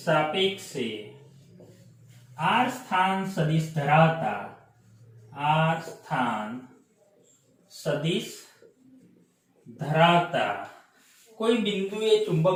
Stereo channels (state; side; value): identical; both; correlation 1.00